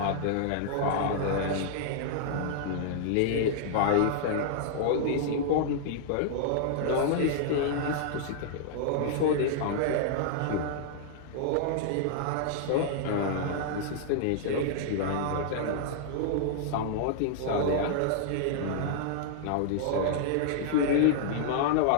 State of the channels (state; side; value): different; both; correlation -0.01